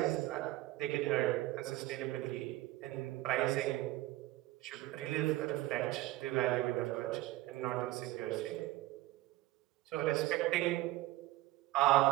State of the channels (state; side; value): quieter; left; 17.3 dB